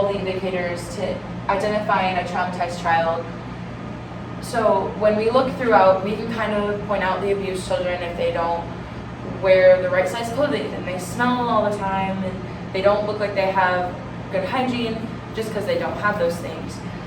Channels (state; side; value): identical; both; correlation 1.00